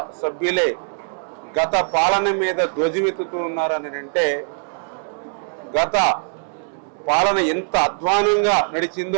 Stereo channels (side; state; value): left; silent; digital silence